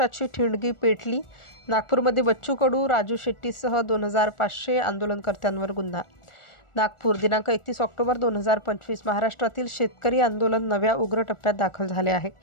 ठिणगी पेटली। नागपूरमध्ये बच्चू कडू, राजू शेट्टीसह 2500 आंदोलनकर्त्यांवर गुन्हा। नागपूर दिनांक 31 ऑक्टोबर 2025 महाराष्ट्रातील शेतकरी आंदोलन नव्या उग्र टप्प्यात दाखल झाले आहे।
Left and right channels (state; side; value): late; right; 1.4 ms